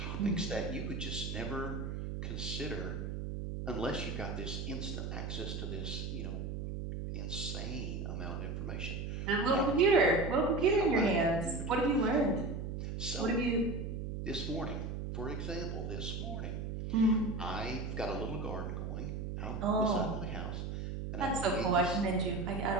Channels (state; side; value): noise; right; hum, 4 dB below the sound